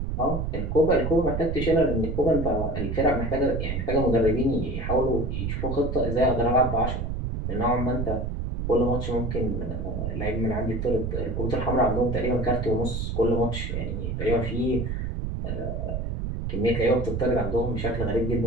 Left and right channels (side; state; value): right; noise; rumble, 3 dB below the sound